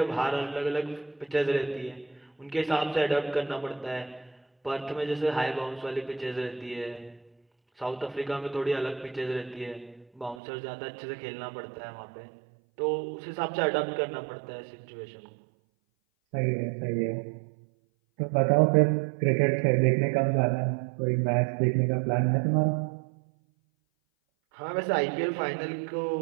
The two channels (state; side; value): drops out; left; at 10.4 s